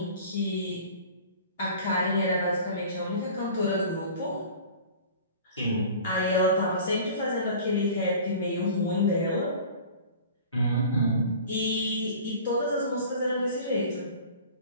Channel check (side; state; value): both; inverted; correlation -0.42